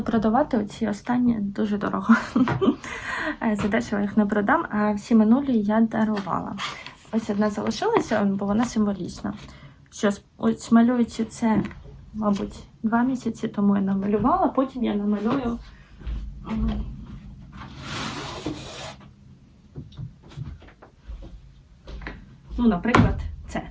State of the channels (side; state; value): both; identical; correlation 1.00